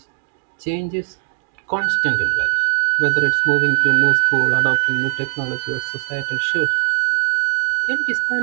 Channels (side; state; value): left; silent; 67 dB below the other